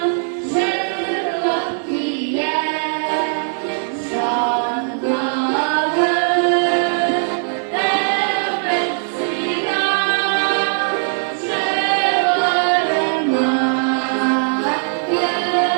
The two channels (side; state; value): left; silent; 58 dB below the other